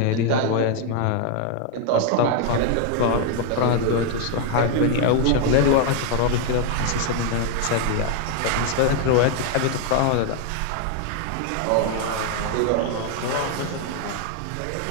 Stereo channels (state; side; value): different; both; correlation 0.00